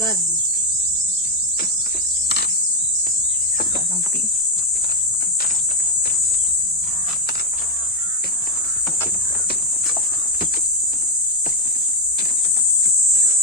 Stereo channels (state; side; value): normal; both; correlation 0.05